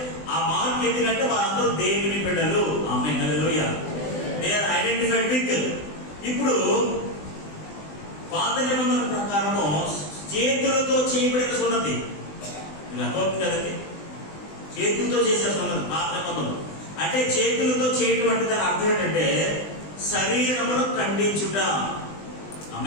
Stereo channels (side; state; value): right; late; 20 ms